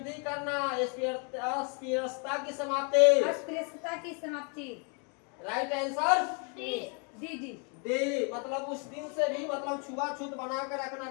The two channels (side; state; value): right; quieter; 36.9 dB